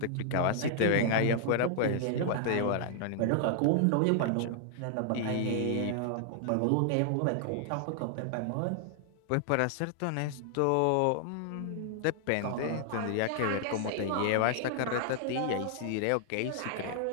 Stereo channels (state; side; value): different; both; correlation 0.00